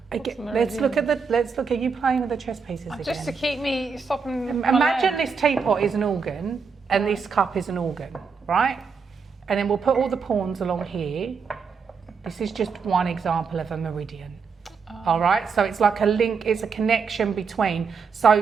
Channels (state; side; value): quieter; left; 5.5 dB